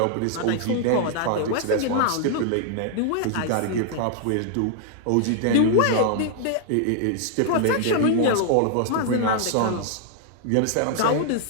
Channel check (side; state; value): both; different; correlation -0.01